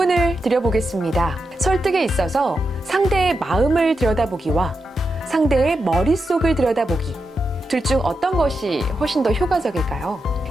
드려보겠습니다. 설득에 있어서 상대의 마음을 들여다보기와 상대의 머릿속을 들여다보기, 둘 중 어떤 것이 훨씬 더 효과적일까요?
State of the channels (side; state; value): both; normal; correlation 0.87